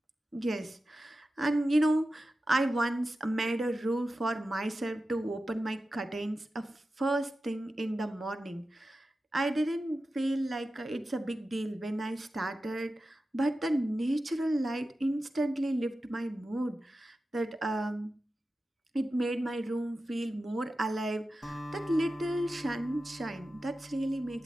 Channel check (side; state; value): both; normal; correlation 0.93